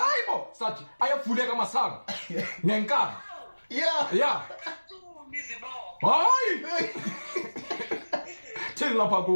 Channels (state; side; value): inverted; both; correlation -1.00